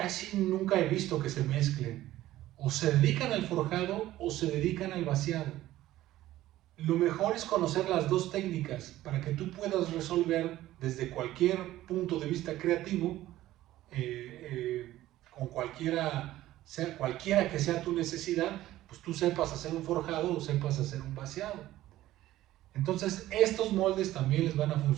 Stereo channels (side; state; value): left; quieter; 14.9 dB